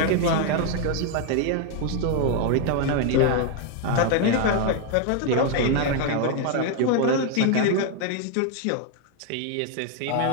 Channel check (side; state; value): both; different; correlation 0.01